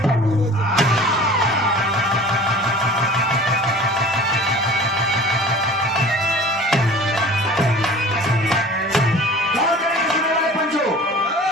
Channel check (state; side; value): normal; both; correlation 0.42